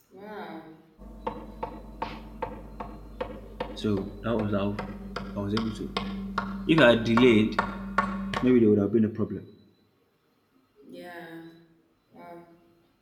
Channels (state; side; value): identical; both; correlation 1.00